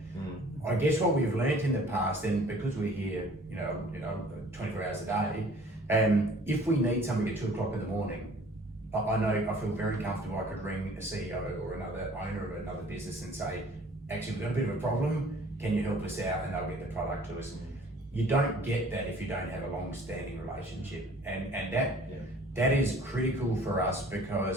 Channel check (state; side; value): normal; both; correlation 0.52